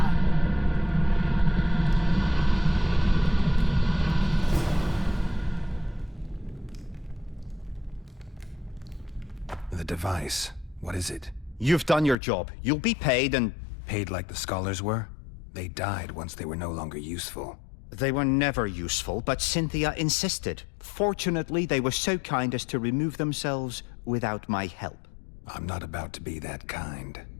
The device. What is it? You've done your job. You'll be paid and... Paid like the scholars were? They died once they were no longer useful. They were never useful, but Cynthia insisted. Fortunately, they were so kind as to remove themselves without my help. I'm not about to be that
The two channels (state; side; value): drops out; right; at 12.2 s